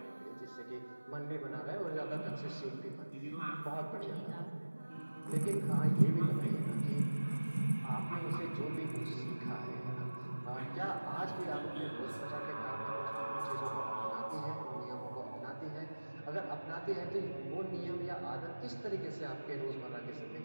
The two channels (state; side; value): inverted; both; correlation -1.00